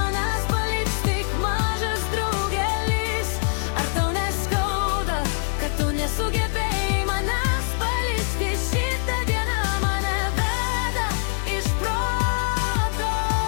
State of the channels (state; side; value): silent; right; digital silence